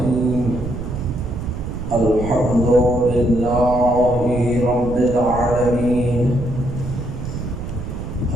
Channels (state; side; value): noise; right; rumble, 7 dB below the sound